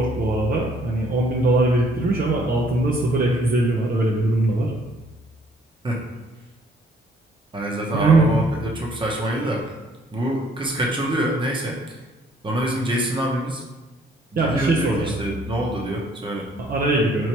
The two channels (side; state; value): both; normal; correlation 0.62